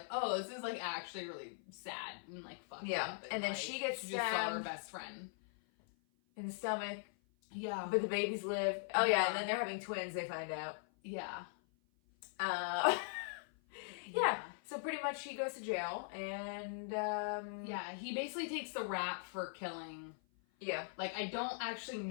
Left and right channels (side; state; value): right; silent; 51 dB below the other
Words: oh, this is like actually really sad and like fucked up. And then like, she gets stabbed. Just saw her best friend in the stomach. Yeah. But the babies live. Oh yeah, and then they're having twins, they find out. Yeah. So pretty much she goes to jail, and he basically takes the rap for killing. Yeah. Like, I don't actually